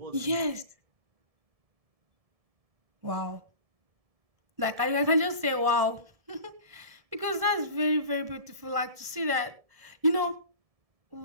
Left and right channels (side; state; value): left; late; 1.7 ms